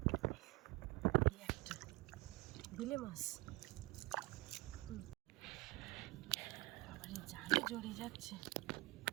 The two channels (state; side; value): quieter; left; 22.4 dB